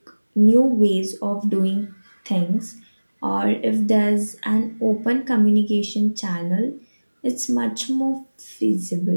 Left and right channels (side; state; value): both; inverted; correlation -1.00